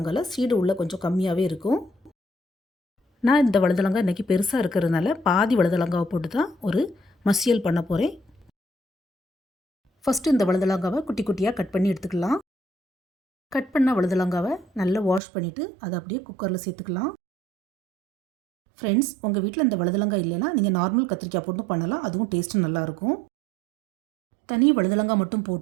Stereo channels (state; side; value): drops out; left; at 15.2 s